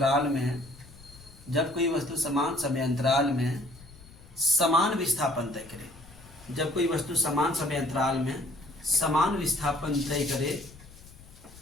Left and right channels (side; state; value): left; noise; rumble, 21 dB below the sound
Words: में, जब कोई वस्तु समान समय अंतराल में समान विस्थापन तय करे, जब कोई वस्तु समान समय अंतराल में समान विस्थापन तय करे